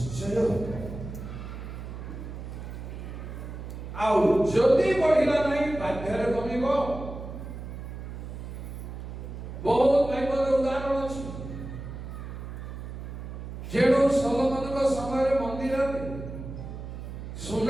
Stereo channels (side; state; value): right; noise; hum, 9 dB below the sound